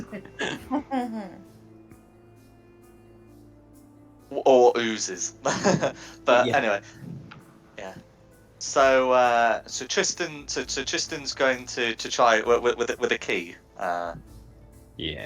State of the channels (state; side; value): identical; both; correlation 1.00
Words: Or oozes. But Yeah. anyway, yeah. So Tristan's going to try with a key.